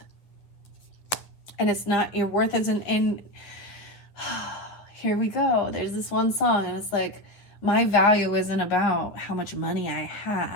And it's not, your worth isn't in, here we go. There's this one song, and it's like, my value isn't about how much money I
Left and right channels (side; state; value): right; late; 9.7 ms